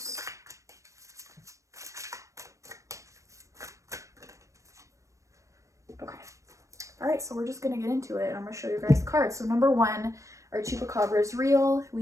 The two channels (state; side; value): late; left; 0.15 ms